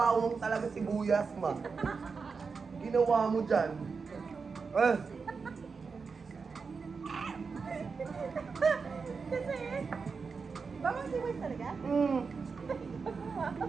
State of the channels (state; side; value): quieter; left; 5.0 dB